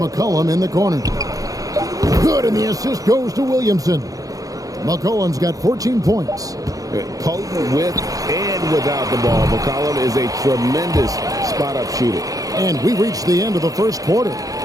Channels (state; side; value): late; left; 0.17 ms